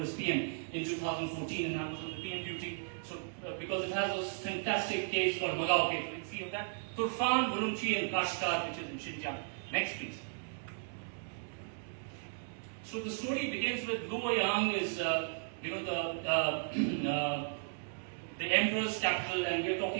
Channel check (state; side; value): silent; left; digital silence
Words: as PM in 2014, and I was on the PM duty. So, because it has those fantastic caves called Magao Cave, you can see of that. Turfan, Urumqi, and Kashgar, which is in Xinjiang. Next, please. So the story begins with Luoyang is, the emperor's capital, and we're